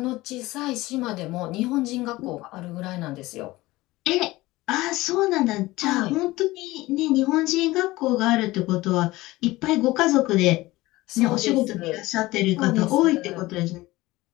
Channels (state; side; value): quieter; right; 19.1 dB